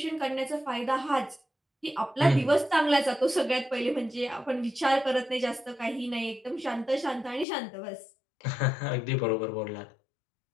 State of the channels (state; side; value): drops out; right; at 7.5 s